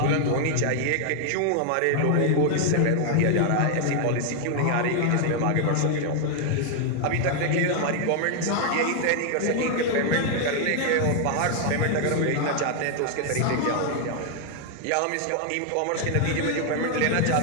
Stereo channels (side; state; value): both; different; correlation 0.00